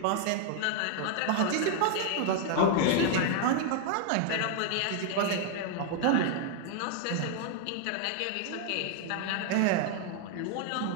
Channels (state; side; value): different; both; correlation 0.00